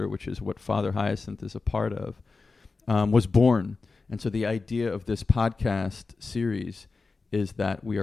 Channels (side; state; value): right; quieter; 4.1 dB